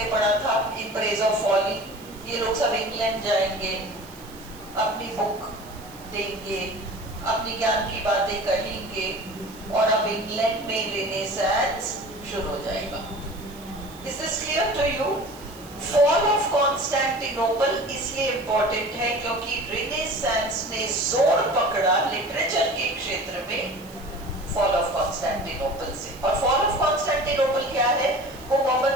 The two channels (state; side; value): noise; right; hiss, 22 dB below the sound